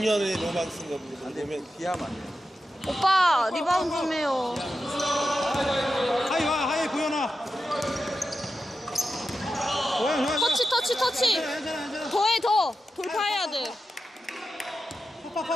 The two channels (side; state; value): both; normal; correlation 0.91